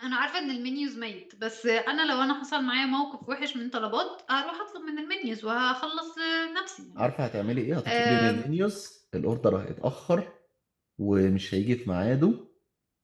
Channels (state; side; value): identical; both; correlation 1.00